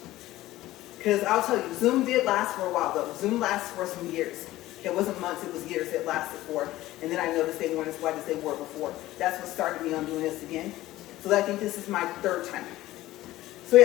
because I'll tell you, Zoom did last for a while though. Zoom lasts for some years. It wasn't months, it was years it lasted for. And then I noticed they weren't as white as they were before. That's what started me on doing this again. So I think this is my third time. So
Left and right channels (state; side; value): quieter; right; 16.2 dB